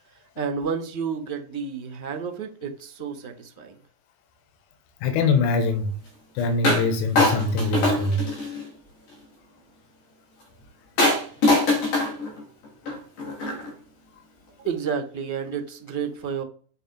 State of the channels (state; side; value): late; right; 14 ms